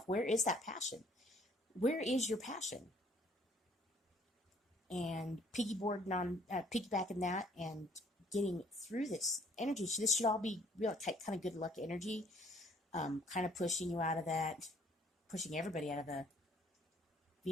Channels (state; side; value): normal; both; correlation 0.59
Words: where is that passion? Where is your passion? And piggybacking that and getting through this energy. So this should all be real kind of good luck energy. Kind of pushing you out of that, pushing everybody out of the